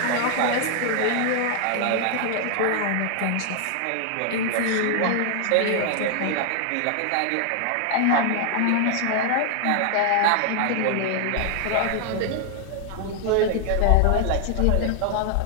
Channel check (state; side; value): different; both; correlation 0.00